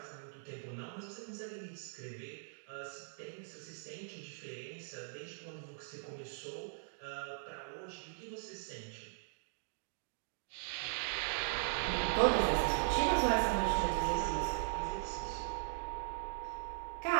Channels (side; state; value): left; silent; digital silence